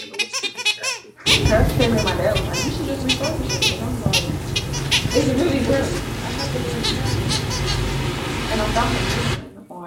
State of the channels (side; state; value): both; identical; correlation 1.00